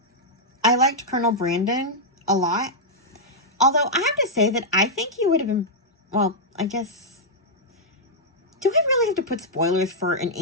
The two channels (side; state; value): both; normal; correlation -0.06